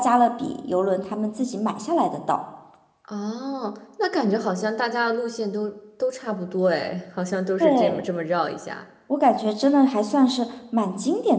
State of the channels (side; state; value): both; identical; correlation 1.00